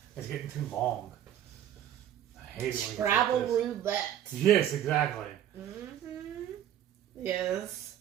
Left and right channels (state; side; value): quieter; left; 11.0 dB